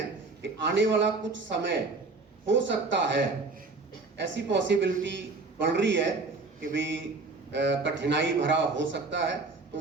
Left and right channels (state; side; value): quieter; left; 3.8 dB